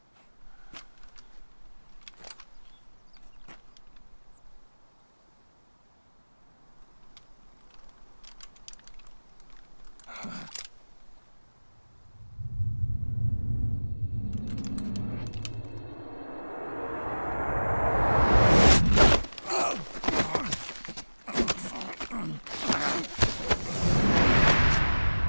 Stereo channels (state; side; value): inverted; both; correlation -1.00